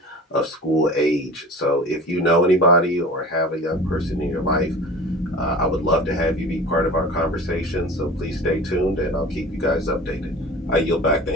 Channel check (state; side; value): normal; both; correlation 0.38